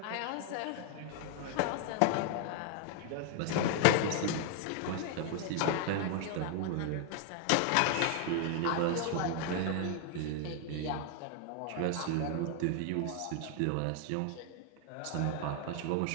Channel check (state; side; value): different; both; correlation 0.00